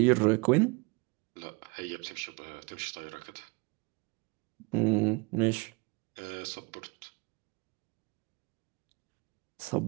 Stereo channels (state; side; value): quieter; left; 28.7 dB